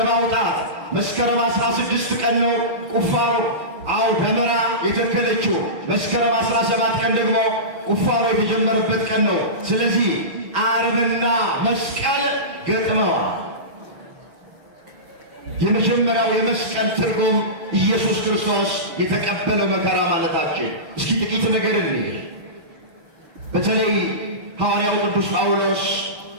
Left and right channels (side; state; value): left; late; 6.1 ms